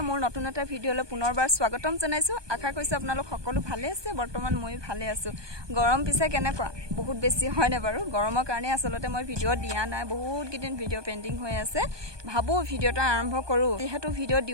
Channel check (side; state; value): left; late; 1.2 ms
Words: মোৰ নতুন এটা ভিডিঅলৈ পুনৰবাৰ স্বাগতম জনাইছো আশা কৰিছো আপোনালোক সকলো ভালে আছে বৰ্তমান মই ভালে আছো গৰম পিছে কেনেকুৱা বহুত বেছি হয় না বাৰু গৰমৰ কাৰণে আসলতে মই ভিডিঅ দিয়া নাই বহুত কিদিন ভিডিঅ পেন্ডিং হৈ আছে ভাবো ভিডিঅটা আৰম্ভ কৰো যেহেতু ভিডিঅ